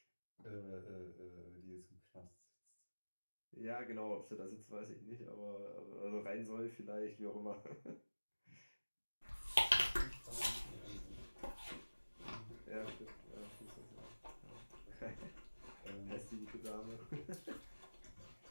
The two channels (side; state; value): both; inverted; correlation -1.00